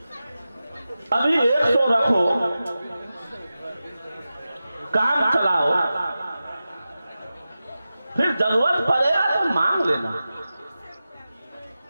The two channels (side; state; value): both; inverted; correlation -0.94